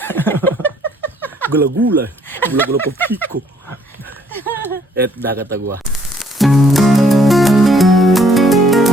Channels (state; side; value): normal; both; correlation 0.64